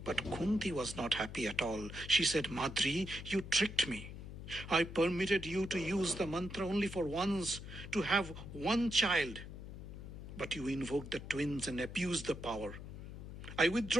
But Kunti was not happy at all. She said, Madri, you tricked me. I permitted you to use the mantra only for once, to have one child. But you invoked the twins and abused the power. I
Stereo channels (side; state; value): left; noise; hum, 11 dB below the sound